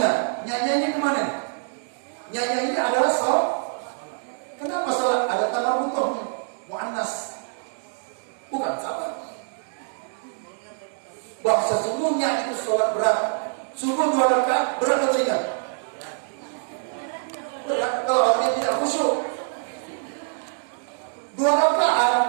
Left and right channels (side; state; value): left; silent; digital silence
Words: nyanyinya kemana? Nyanyi ini adalah salat. Kenapa salat? Ada tamar butuhnya mu'annas, bukan sabar. Bahwa sesungguhnya itu salat berat. Sungguh 2 rakaat berat atau ringan? Berat kalau orang tidak khusyuk. 2